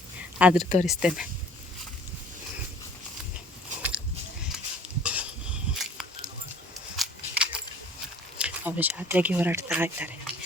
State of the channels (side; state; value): both; normal; correlation 0.52